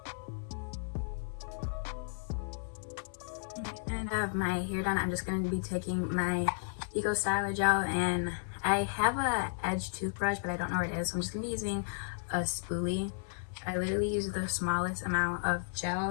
And I have my hair done. I'm just going to be taking my Eco Styler gel, and I have a edge toothbrush, but I don't know where it is, so I'm just going to be using a spoolie. I literally use the smallest amount of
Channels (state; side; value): silent; right; 55 dB below the other